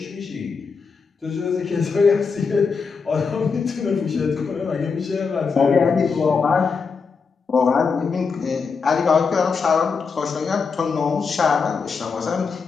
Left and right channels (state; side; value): quieter; right; 5.2 dB